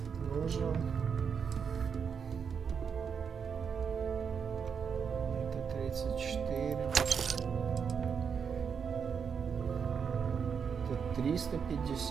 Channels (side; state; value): left; quieter; 6.6 dB